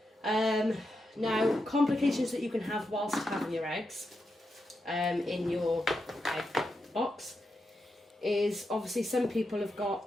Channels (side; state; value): both; normal; correlation 0.86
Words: Now, complications that you can have whilst having your eggs in your egg box is obviously some people have